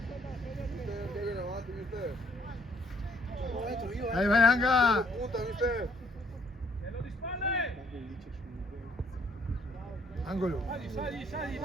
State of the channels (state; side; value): normal; both; correlation 0.66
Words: Dai, vai Anga. Nello di spalle. Angolo. Sali,